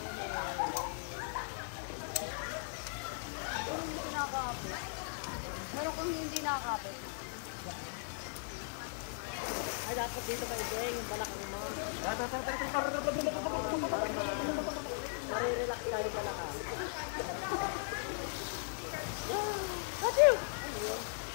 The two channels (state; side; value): silent; right; digital silence